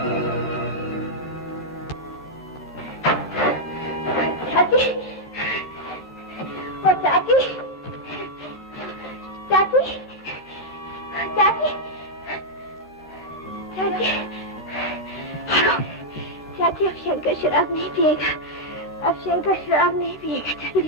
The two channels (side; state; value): both; normal; correlation -0.03